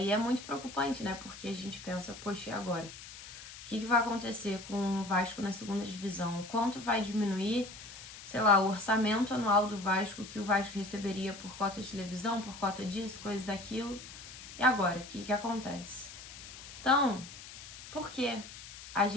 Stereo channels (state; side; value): noise; left; hiss, 14 dB below the sound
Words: muito preocupante, né? Porque a gente pensa, poxa, e agora? O que vai acontecer com o Vasco na segunda divisão? Quanto vai diminuir, sei lá, o orçamento anual do Vasco que o Vasco receberia por cota de televisão, por cota disso, coisa daquilo? E agora, o que acontece? Então, por que a